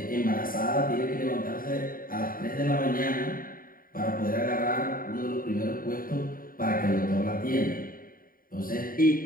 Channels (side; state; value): right; late; 0.41 ms